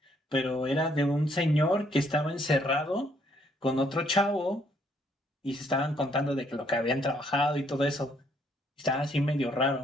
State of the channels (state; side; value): normal; both; correlation 0.68